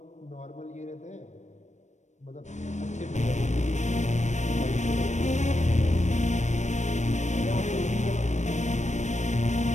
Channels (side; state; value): right; late; 0.34 ms